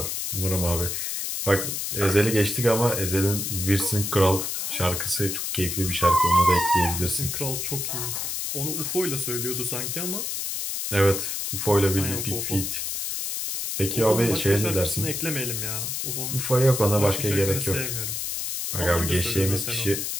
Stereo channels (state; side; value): noise; left; hiss, 3 dB below the sound